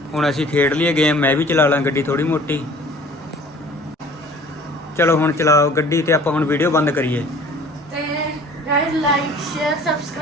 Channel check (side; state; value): both; normal; correlation 0.49